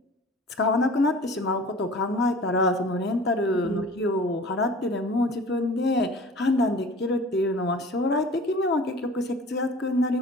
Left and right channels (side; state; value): both; normal; correlation 0.44